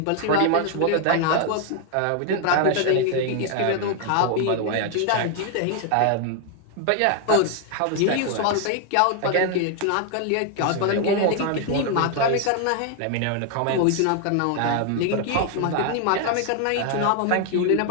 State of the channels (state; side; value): different; both; correlation 0.00